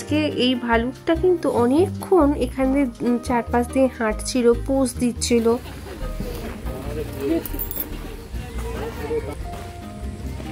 এই ভালুকটা কিন্তু অনেকক্ষণ এখানে চারপাশ দিয়ে হাঁটছিল, পোজ দিচ্ছিল।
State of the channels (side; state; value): both; identical; correlation 1.00